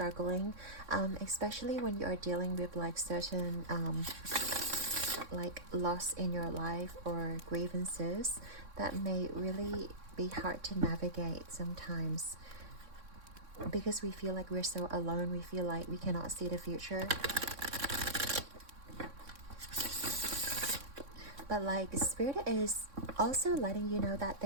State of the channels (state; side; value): late; left; 3.6 ms